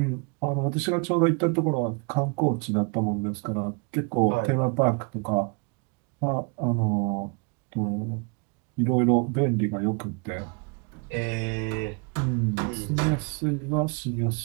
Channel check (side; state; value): left; quieter; 33.0 dB